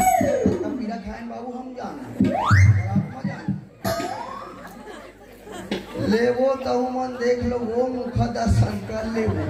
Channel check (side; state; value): both; identical; correlation 1.00